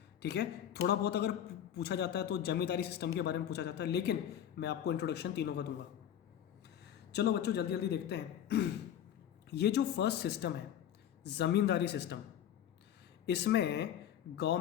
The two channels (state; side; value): quieter; right; 10.2 dB